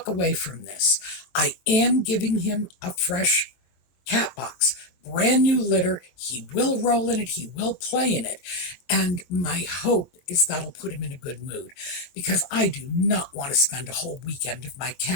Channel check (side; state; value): right; late; 23 ms